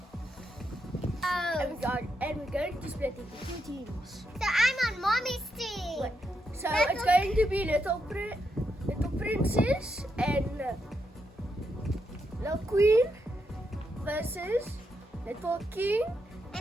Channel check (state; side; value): normal; both; correlation 0.82